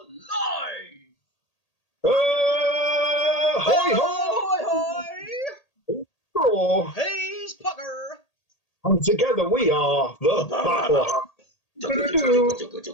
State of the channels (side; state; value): right; late; 1.8 ms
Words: live! Hoi hoi hoi! hoi! He's Pucker! And together we are the Battle.